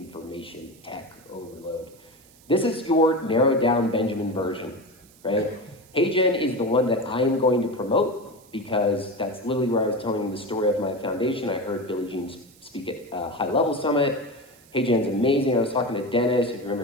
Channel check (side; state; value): right; noise; hiss, 27 dB below the sound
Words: tech overload. This is your narrowed down Benjamin version, right? HeyGen is the one that I am going to promote because that's literally where I was telling the story of my foundation. I heard Billie Jean speak at a high level summit. HeyGen's amazing. I was talking to Dennis, if you